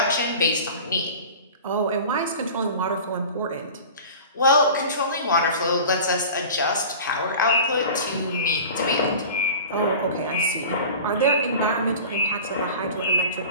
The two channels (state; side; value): inverted; both; correlation -0.38